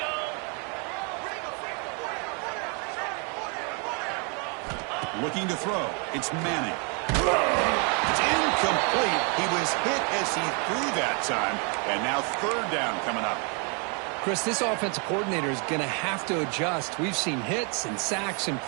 Looking to throw. It's Manning. It's incomplete. He was hit as he threw that time. And now 3rd down coming up. Chris, this offensive coordinator is going to have to adjust. We've seen hits and sacks and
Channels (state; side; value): quieter; left; 35.9 dB